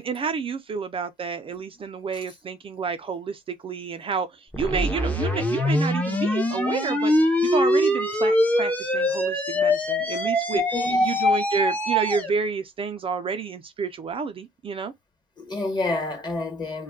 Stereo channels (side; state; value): both; normal; correlation 0.64